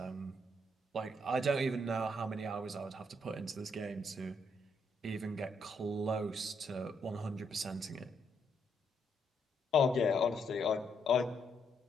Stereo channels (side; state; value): both; normal; correlation 0.75